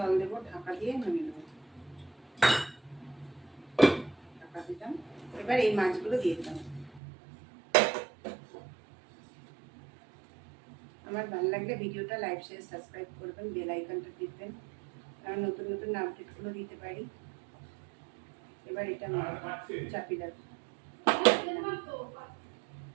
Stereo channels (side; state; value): left; drops out; at 7.0 s